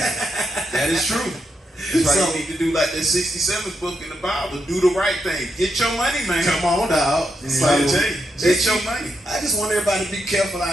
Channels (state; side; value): normal; both; correlation 0.83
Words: That is true. That's why you need to do like that 67th book in the Bible. Do the right thing. Get your money, man. Come on, dog. So, get your money. I just want everybody to be careful